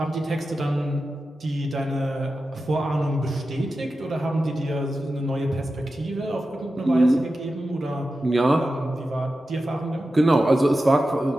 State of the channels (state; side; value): normal; both; correlation 0.92